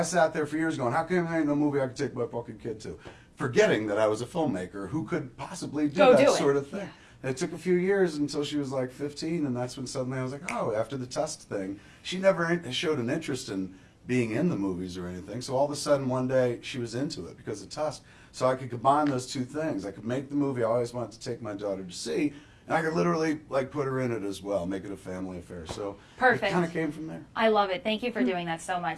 sat there for years going, how come there ain't no movie I could take my fucking kid to? Forgetting that I was a filmmaker who could possibly do that sort of thing. And it took a few years until she was like 15, and that's when suddenly I was like, oh, after the Tusk thing, she never showed an interest in being in the movies or anything. So all of a sudden one day she was into it because of Tusk. So I could combine those two things. I could make the movie I always wanted to take my daughter to see, And I could literally like put her in it as well, make it a family affair. So Perfect. it kind of came from there. I love it. Thank you for doing that so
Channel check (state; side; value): identical; both; correlation 1.00